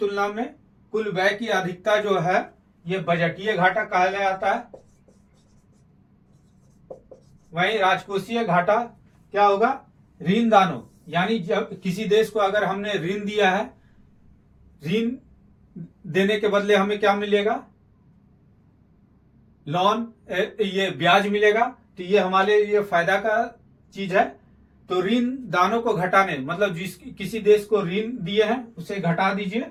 में कुल व्यय की अधिकता जो है ये बजटीय घाटा कहा जाता है। वहीं राजकोषीय घाटा क्या होगा? ऋण दानों, यानी जब किसी देश को अगर हमने ऋण दिया है, ऋण देने के बदले हमें क्या मिलेगा? लोन, ये ब्याज मिलेगा, तो ये हमारे लिए फायदा का चीज है। तो ऋण दानों को घटाने मतलब किसी देश को ऋण दिए हैं उसे घटा दीजिए,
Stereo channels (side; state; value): both; identical; correlation 1.00